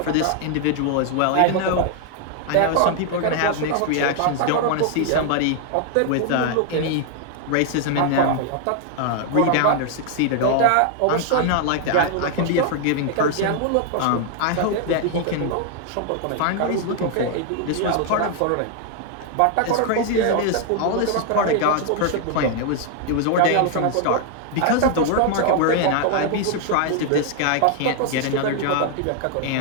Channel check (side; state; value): both; different; correlation 0.00